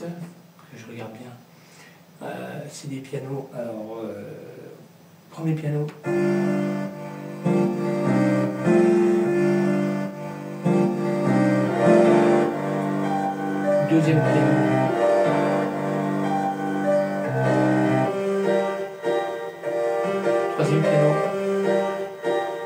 que je regarde bien. C'est des pianos. Alors, premier piano. Deuxième piano. Troisième piano.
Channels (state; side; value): identical; both; correlation 1.00